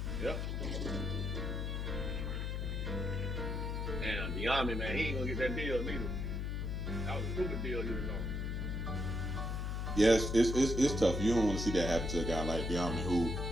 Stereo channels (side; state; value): left; noise; hum, 2 dB below the sound